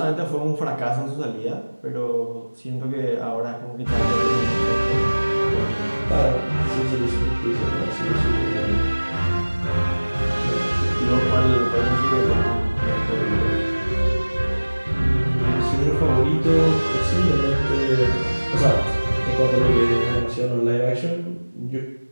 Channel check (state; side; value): inverted; both; correlation -1.00